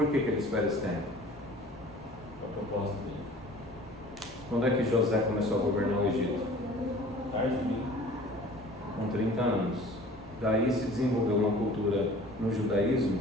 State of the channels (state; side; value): normal; both; correlation 0.47